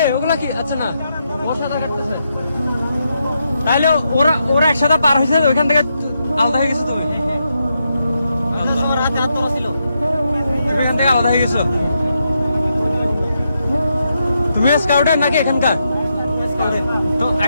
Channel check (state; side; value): inverted; both; correlation -0.82